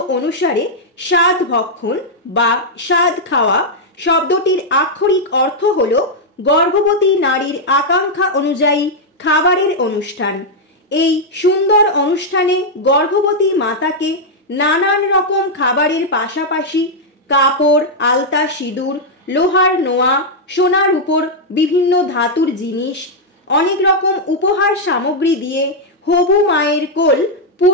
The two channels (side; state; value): both; normal; correlation -0.03